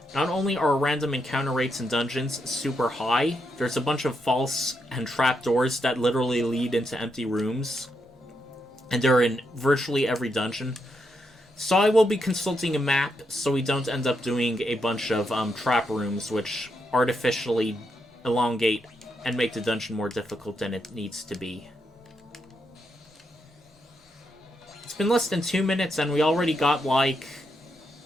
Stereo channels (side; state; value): both; normal; correlation 0.81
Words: Not only are random encounter rates in dungeons super high, there's a bunch of false and trapdoors that literally lead into empty rooms, and they're in virtually every dungeon. So I will be consulting a map so we don't end up doing a bunch of trap rooms which artificially elongate and make the dungeon more difficult than it needs to be. It's been less than 2 minutes and we already got like